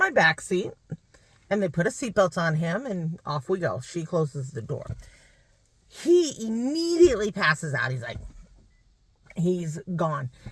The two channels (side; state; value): both; identical; correlation 1.00